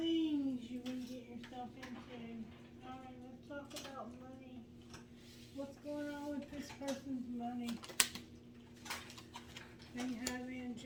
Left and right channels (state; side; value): identical; both; correlation 1.00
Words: you will get yourself into. Alright, let's talk about money. What's going on with this person's money? They have